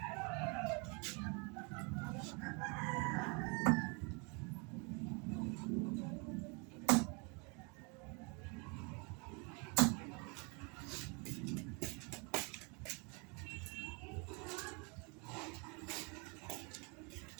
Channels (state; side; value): quieter; left; 32.4 dB